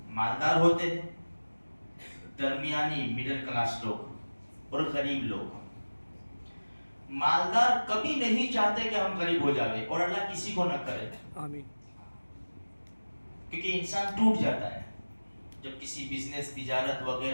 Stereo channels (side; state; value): both; inverted; correlation -1.00